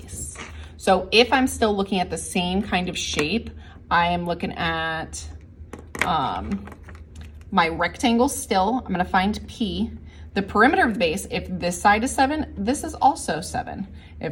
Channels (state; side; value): identical; both; correlation 1.00